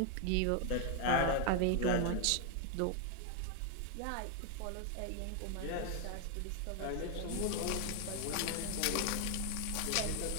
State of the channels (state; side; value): different; both; correlation 0.00